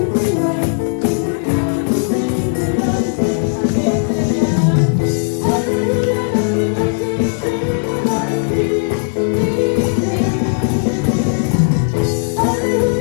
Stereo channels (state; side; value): silent; right; 68 dB below the other